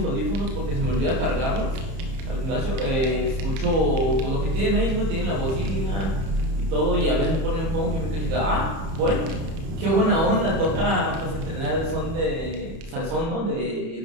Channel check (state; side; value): late; left; 31 ms